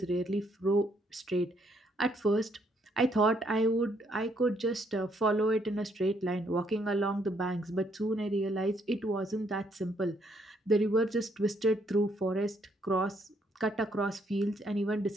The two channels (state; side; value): normal; both; correlation 0.71